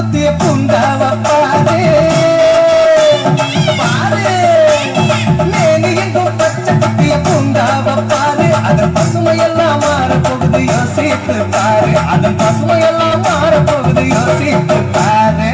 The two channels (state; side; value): identical; both; correlation 1.00